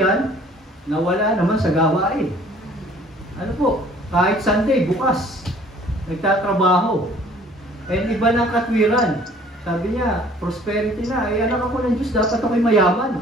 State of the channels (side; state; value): both; normal; correlation 0.54